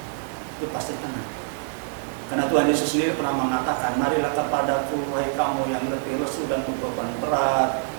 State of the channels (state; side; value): silent; left; digital silence